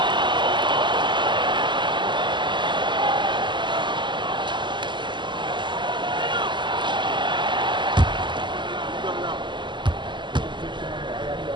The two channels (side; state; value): left; late; 0.22 ms